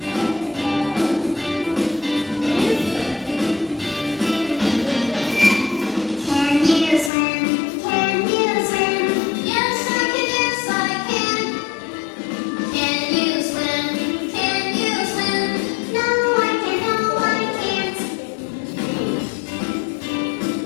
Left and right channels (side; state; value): right; drops out; at 7.1 s